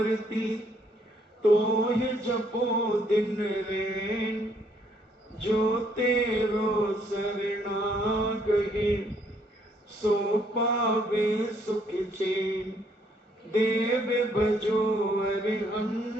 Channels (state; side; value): normal; both; correlation 0.68